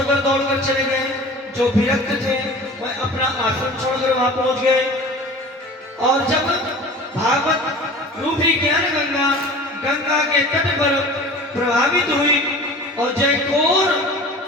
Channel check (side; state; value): both; normal; correlation 0.40